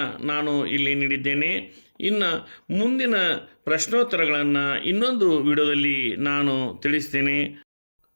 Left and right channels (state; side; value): inverted; both; correlation -1.00